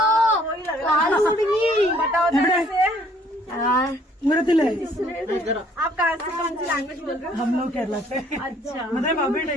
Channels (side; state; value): both; normal; correlation 0.61